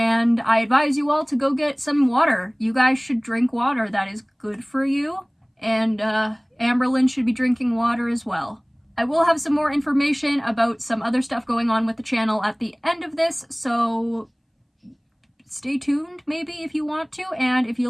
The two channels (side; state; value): both; identical; correlation 1.00